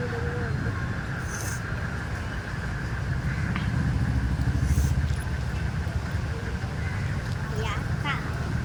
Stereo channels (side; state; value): both; identical; correlation 1.00